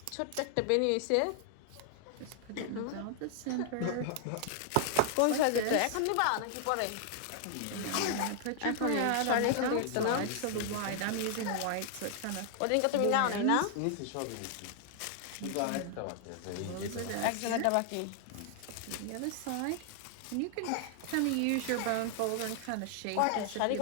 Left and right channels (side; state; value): both; different; correlation 0.00